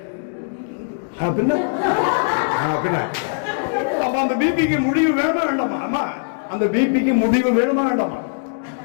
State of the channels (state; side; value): silent; right; digital silence